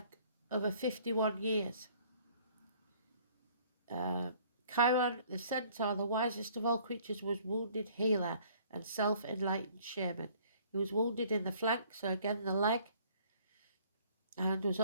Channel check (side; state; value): both; inverted; correlation -0.57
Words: over 51 years. Chiron, the centaur, the wisest of all creatures, was wounded healer and self-enlightened shaman. He was wounded in the flank, so again the leg, and was